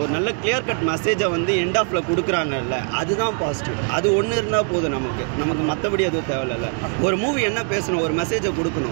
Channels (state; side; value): quieter; left; 39.5 dB